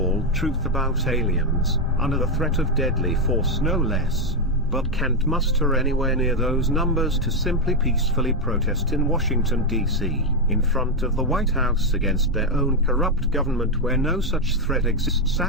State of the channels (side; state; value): both; normal; correlation 0.04